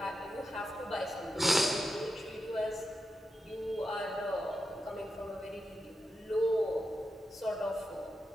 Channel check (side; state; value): both; normal; correlation 0.89